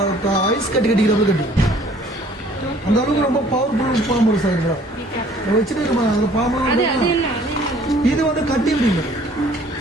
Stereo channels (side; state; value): both; normal; correlation 0.55